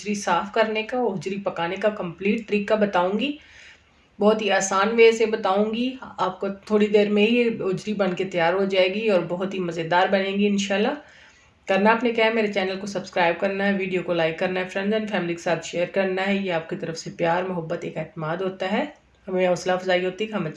साफ़ करने का, उजरी पकाने का कंप्लीट तरीका बताऊंगी। बहुत ही आसान वे से बताऊंगी। आपको थोड़ी देर में ही उजरी बन के तैयार हो जाएगी और बहुत ही मज़ेदार बनेगी इंशाल्लाह। करना आपने क्या है, मेरे चैनल को सब्सक्राइब करना है, वीडियो को लाइक करना है, फ्रेंड्स एंड फैमिली के साथ शेयर करना है। ये आपकी तरफ से प्यार, मोहब्बत, एक एतमाद होता है। हमें हौसला अफजाई होती है कि हम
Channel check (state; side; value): identical; both; correlation 1.00